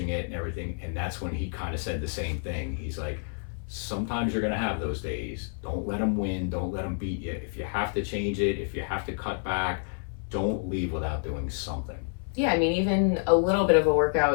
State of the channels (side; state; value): right; silent; 57 dB below the other